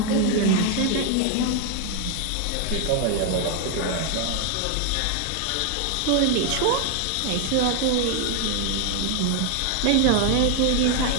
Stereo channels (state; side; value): different; both; correlation 0.01